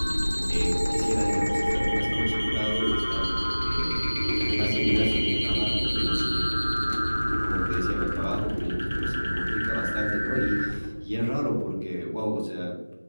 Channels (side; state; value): both; inverted; correlation -1.00